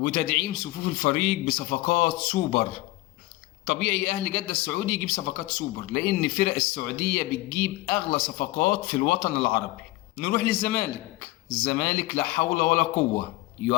صفوف الفريق بصفقات سوبر. طبيعي أهل جدة السعودي يجيب صفقات سوبر، لأن فرق السعودية بتجيب أغلى صفقات في الوطن العربي. نروح للزمالك. الزمالك لا حول ولا قوة،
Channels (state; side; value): quieter; right; 19.0 dB